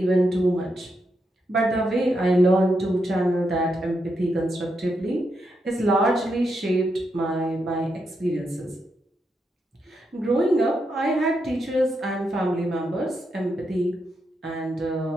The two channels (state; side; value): normal; both; correlation 0.83